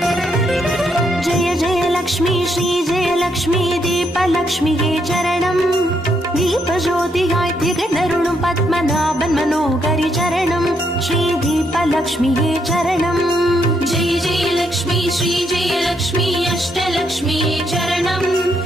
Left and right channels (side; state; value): both; normal; correlation 0.76